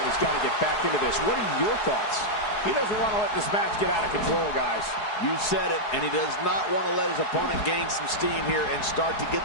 has got to get back into this. What are your thoughts? He doesn't want to let this match get out of control, guys. You said it, and he does not want to let his opponent gain some steam here and start to get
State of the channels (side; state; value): right; late; 4.7 ms